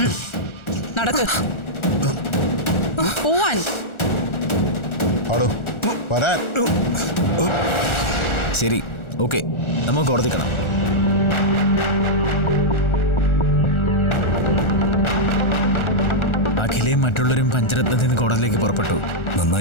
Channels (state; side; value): late; right; 1.4 ms